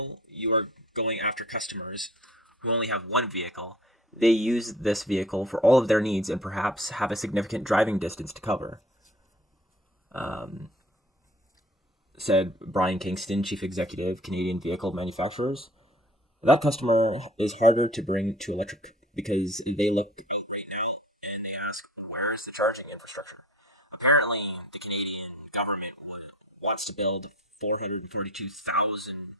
you are going after customers who only have one vehicle. They use this vehicle for all of their needs and perhaps have a significant driving distance to cover. Um, Said Brian Kingston, chief executive, Canadian Vehicle Manufacturers. That customer is harder to bring to electric because they look out right now and they ask, where is the charging infrastructure? Apparently, the Canadian government wants to build 432,000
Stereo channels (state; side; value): normal; both; correlation 0.47